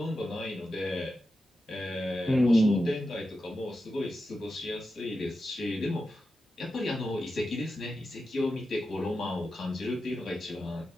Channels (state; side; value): normal; both; correlation 0.90